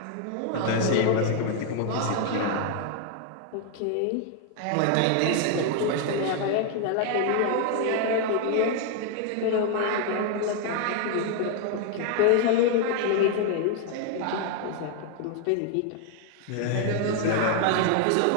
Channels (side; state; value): both; different; correlation 0.00